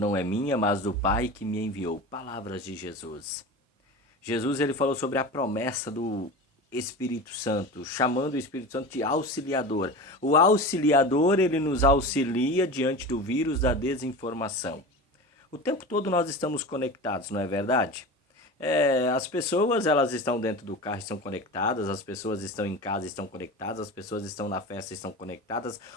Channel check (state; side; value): normal; both; correlation 0.30